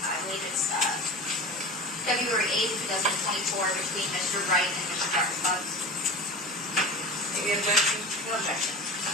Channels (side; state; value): both; normal; correlation 0.33